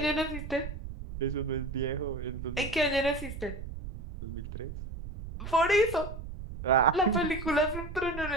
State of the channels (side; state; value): right; noise; rumble, 9 dB below the sound